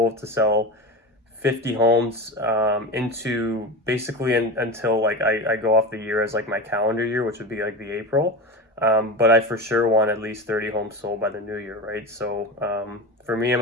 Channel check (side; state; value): both; normal; correlation 0.25